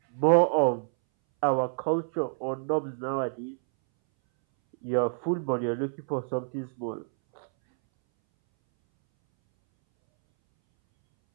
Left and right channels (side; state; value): left; silent; 60 dB below the other